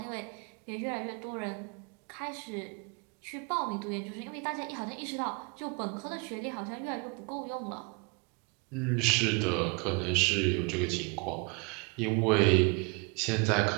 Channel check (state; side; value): quieter; left; 30.3 dB